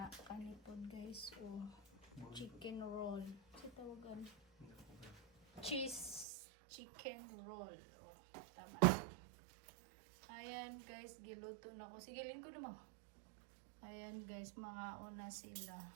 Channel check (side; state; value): left; drops out; at 6.2 s